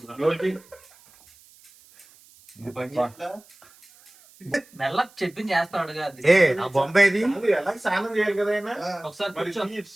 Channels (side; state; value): right; noise; hiss, 26 dB below the sound